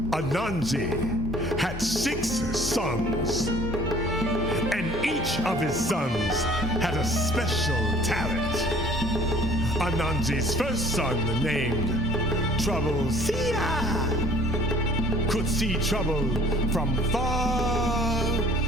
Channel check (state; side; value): normal; both; correlation 0.52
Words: Anansi had 6 sons, and each of his sons had a special talent. Anansi's first son, named Trouble-Seer, could see trouble from far